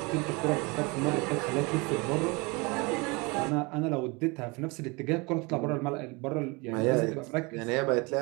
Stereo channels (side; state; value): left; quieter; 27.4 dB